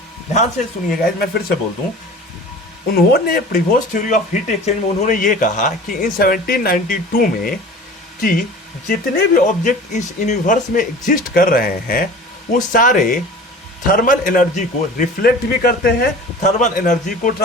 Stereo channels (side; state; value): both; normal; correlation 0.40